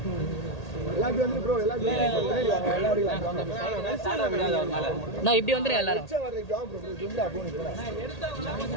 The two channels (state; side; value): late; right; 1.8 ms